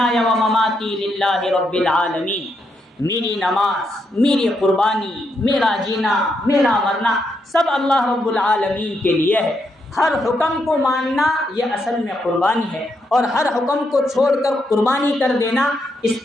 ومماتی للہ رب العالمین. میری نماز، میری قربانی، میرا جینا، میرا مرنا سب اللہ رب العالمین کے لیے ہے. ہر حکم کو ماننا یہ اصل میں قربانی ہے، اور ہر حکم کو چھوڑ کر قربانی کر دینا اس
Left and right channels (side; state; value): both; normal; correlation 0.80